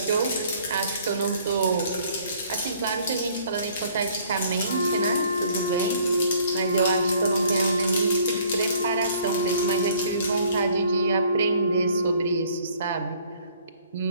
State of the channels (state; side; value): inverted; both; correlation -0.59